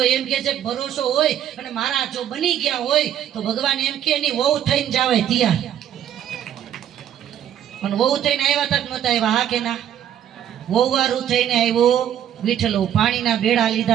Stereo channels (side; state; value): left; quieter; 10.4 dB